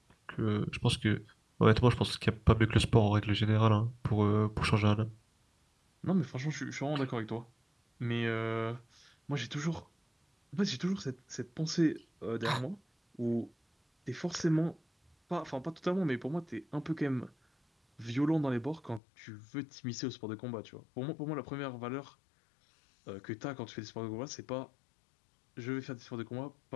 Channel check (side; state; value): right; drops out; at 19.0 s